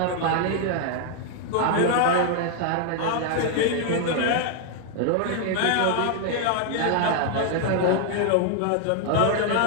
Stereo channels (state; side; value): different; both; correlation 0.00